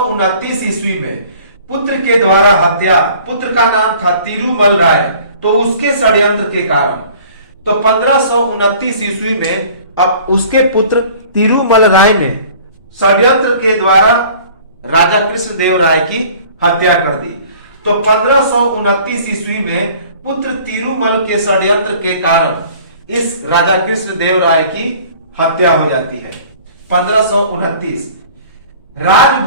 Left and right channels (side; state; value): both; inverted; correlation -0.50